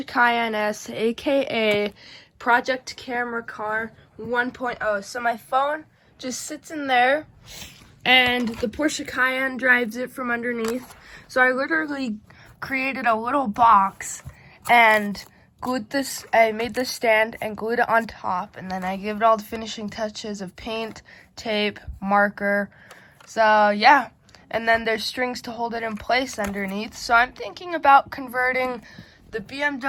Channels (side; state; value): both; identical; correlation 1.00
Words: Cayenne S, aka Project Camera Car 1.0. So my phone just sits in there, and the Porsche Cayenne drives it from underneath. So I literally created a little box and I made this stand and glued it on top, and then I gave it all the finishing touches of paint, tape, marker. So yeah, and then there's strings to hold it in place underneath. So I'm thinking about converting the